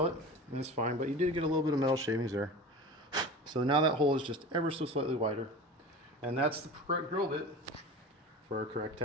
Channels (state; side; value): normal; both; correlation 0.33